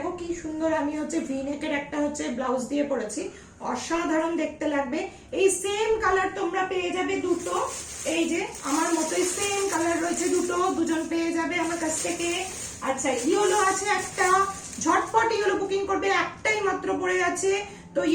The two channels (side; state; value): both; identical; correlation 1.00